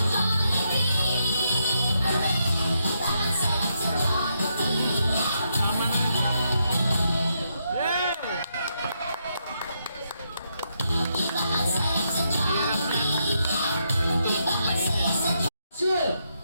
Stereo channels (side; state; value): both; inverted; correlation -0.80